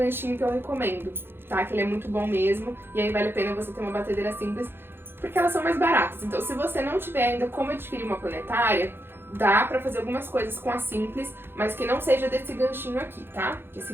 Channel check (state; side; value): late; left; 0.10 ms